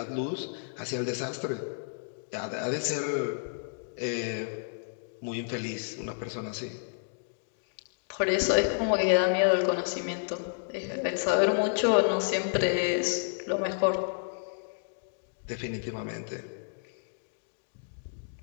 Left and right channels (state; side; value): silent; right; digital silence